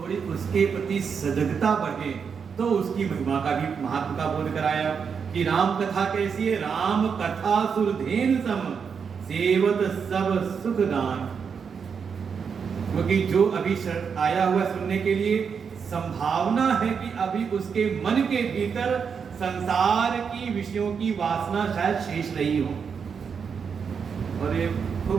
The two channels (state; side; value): quieter; left; 6.4 dB